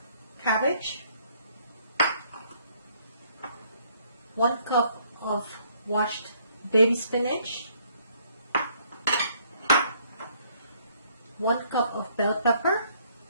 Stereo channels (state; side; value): inverted; both; correlation -0.65